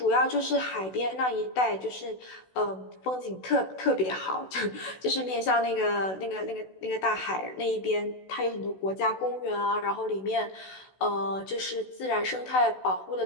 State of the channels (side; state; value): right; late; 16 ms